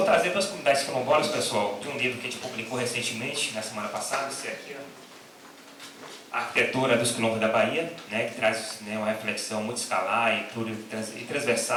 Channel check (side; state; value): both; identical; correlation 1.00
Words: trazer para as comunidades quilombolas, pessoal, de um livro que a gente publicou recentemente, na semana passada, esse aqui, ó. A Arquitetura dos Quilombos da Bahia, né, que traz, né, uma reflexão muito escalar e